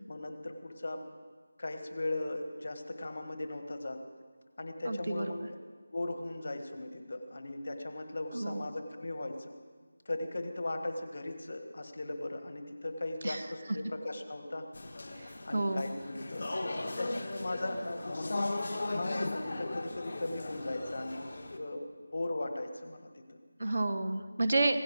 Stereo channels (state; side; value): inverted; both; correlation -0.94